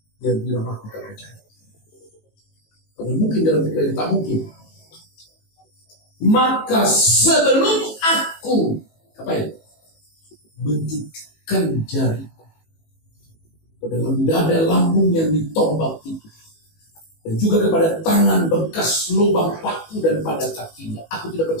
dia bilang, aku tak percaya. Karena mungkin dalam pikirannya tak mungkin. Maka sebelum aku bentukkan jariku ke dalam dada lambung yang ditombak itu, dan juga kepada tangan bekas lubang paku dan pada kakinya, aku tidak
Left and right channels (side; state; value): right; late; 18 ms